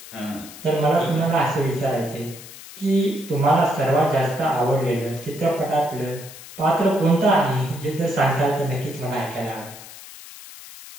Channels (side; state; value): left; noise; hiss, 16 dB below the sound